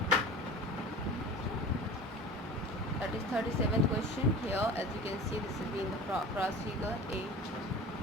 That is 37th question here. As you can see, this has been the cross figure A,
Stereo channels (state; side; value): normal; both; correlation 0.38